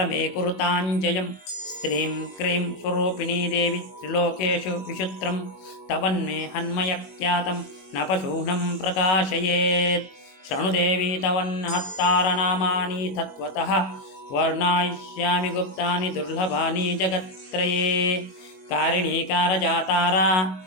ಕುರುತಾಂಜಯಂ. ಸ್ತ್ರೀಂ ಕ್ರೀಂ ಸ್ವರೂಪಿಣೀ ದೇವಿ ತ್ರಿಲೋಕೇಶು ವಿಶುತ್ರಂ ತವನ್ಮೇ ಹನ್ಮಯಕ್ಖ್ಯಾತಂ ನ ಪಶೂನಂ ಪ್ರಕಾಶಯೇತ್. ಶೃಣುದೇವಿ ತವನ್ನಹತ್ತಾರನಾಮಾನಿ ತತ್ವತಃ ವರ್ಣಯಿಷ್ಯಾಮಿ ಗುಪ್ತಾನಿ ದುರ್ಲಭಾನಿ ಜಗತ್ತ್ರಯೇ. ಕಾರಿಣೀ ಕಾರಜಾತಾರಾ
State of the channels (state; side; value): late; right; 21 ms